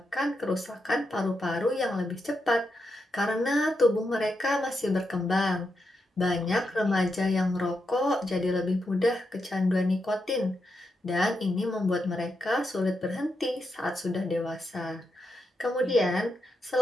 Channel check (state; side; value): normal; both; correlation 0.84